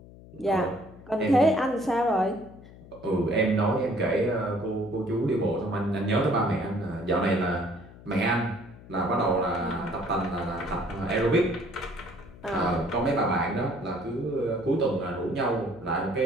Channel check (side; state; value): left; noise; hum, 19 dB below the sound